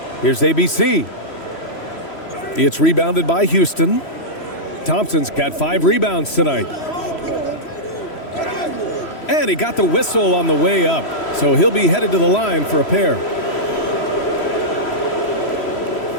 Here's ABC. It's rebounded by Houston. Thompson's got 5 rebounds tonight. And he got the whistle on the way up, so he'll be headed to the line for a pair.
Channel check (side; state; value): right; late; 3.1 ms